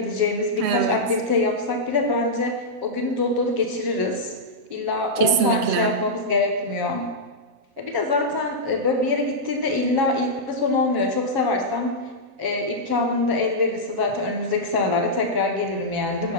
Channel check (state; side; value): late; left; 8.0 ms